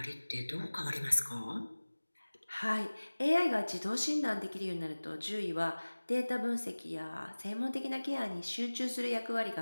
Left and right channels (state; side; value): inverted; both; correlation -1.00